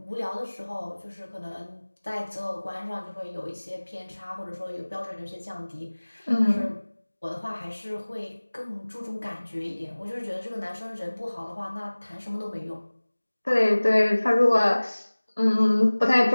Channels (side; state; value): both; inverted; correlation -1.00